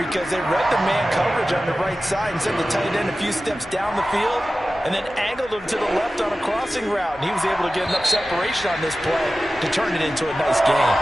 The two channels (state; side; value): noise; left; hum, 24 dB below the sound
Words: they read the man coverage on the right side and sent the tight end a few steps down the field and then angled him to the left on a crossing route. And he was able to get enough separation on this play to turn it into a nice game.